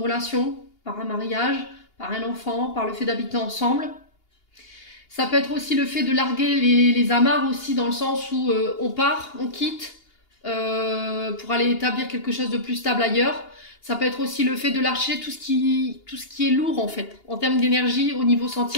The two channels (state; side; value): late; right; 2.8 ms